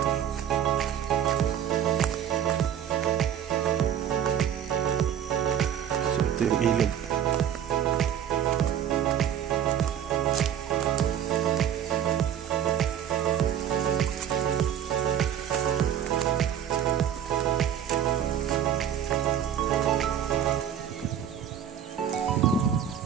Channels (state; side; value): quieter; left; 9.5 dB